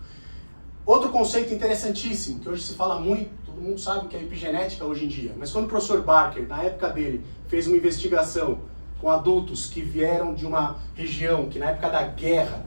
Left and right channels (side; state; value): both; inverted; correlation -1.00